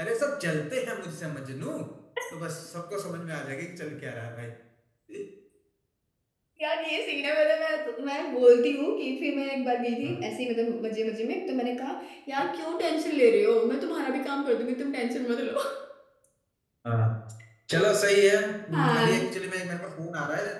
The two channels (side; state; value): both; identical; correlation 1.00